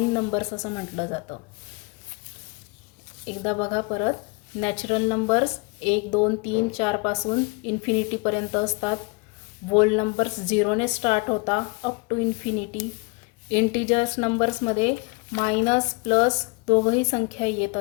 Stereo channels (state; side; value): quieter; right; 28.0 dB